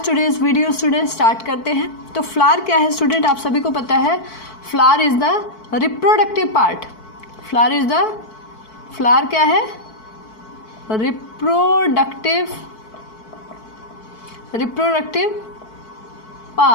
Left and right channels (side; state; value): right; late; 4.6 ms